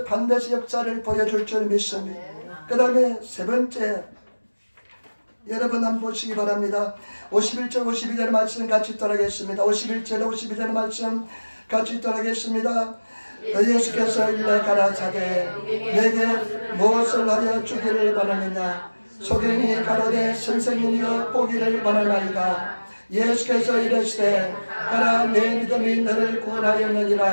반드시 역사를 보여줄 줄 믿습니다. 그 다음에 세 번째 여러분 한번 보시기 바랍니다. 51절 52절 말씀 같이 따라하겠습니다. 51절 52절 말씀 같이 따라하겠습니다. 예수께서 일러 가라사대 내게 무엇을 하여 주기를 원하느냐 소경이 가로되 선생님이여 보기를 원하나이다. 예수께서 이르시되 가라 내 믿음이 너를 구원하였느니라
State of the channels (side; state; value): both; inverted; correlation -1.00